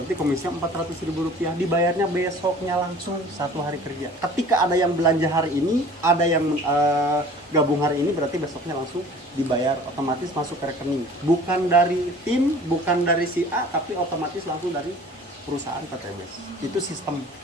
komisinya Rp400.000, dibayarnya besoknya langsung 1 hari kerja. Ketika ada yang belanja hari ini, ada yang gabung hari ini, berarti besoknya langsung dibayar, otomatis masuk ke rekening. Bukan dari tim, bukan dari si A, tapi otomatis langsung dari perusahaan PTBS. Itu sistem.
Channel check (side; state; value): both; normal; correlation 0.47